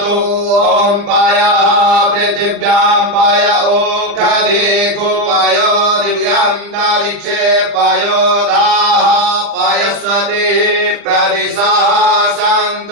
ॐ पयः पृथिव्यां पय ओषधीषु पयो दिव्यान्तरिक्षे पयोधाः पयस्वती प्रदिशः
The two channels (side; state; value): left; late; 40 ms